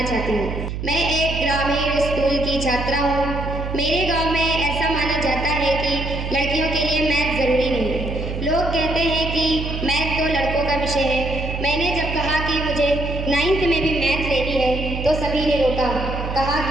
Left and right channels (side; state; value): right; noise; hum, 5 dB below the sound